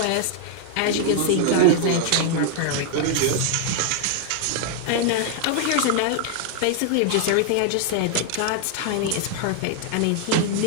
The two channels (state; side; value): different; both; correlation 0.00